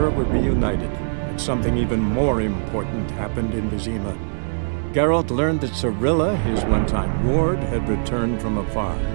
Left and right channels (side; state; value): left; silent; 64 dB below the other